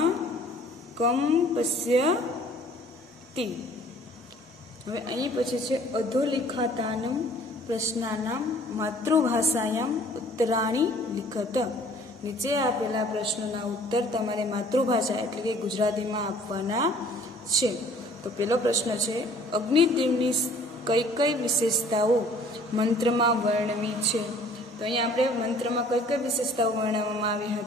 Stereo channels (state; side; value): normal; both; correlation 0.54